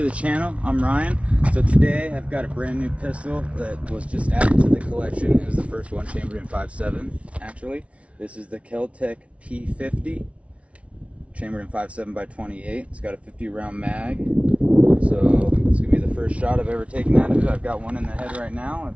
the channel. I'm Ryan. So today I've got a brand new pistol that was just added to the collection. It was the first one chambered in 5.7 actually. This is the Kel-Tec p50 chambered in 5.7 by 28. It's got a 50 round mag. So it's gonna be the first shot I've ever taken out of it. I've got one in the head right now.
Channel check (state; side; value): late; left; 0.063 ms